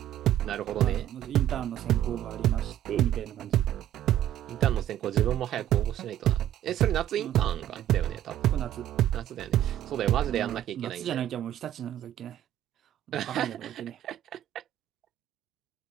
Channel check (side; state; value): left; quieter; 11.9 dB